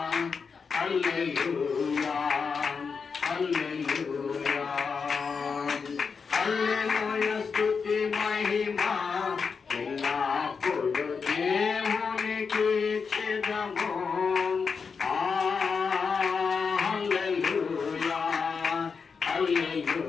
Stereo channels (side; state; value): right; quieter; 5.5 dB